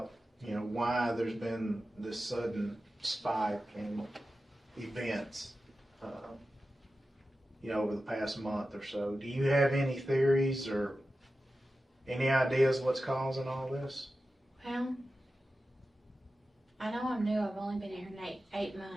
why there's been this sudden spike in events, over the past month or so. Do you have any theories or any ideas what's causing all this? Well, I know I'm new. I've only been here 8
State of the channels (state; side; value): normal; both; correlation 0.93